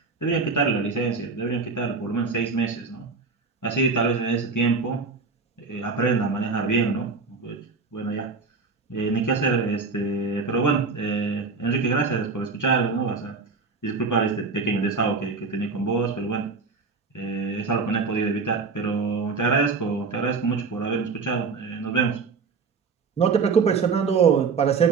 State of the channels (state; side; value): quieter; left; 4.6 dB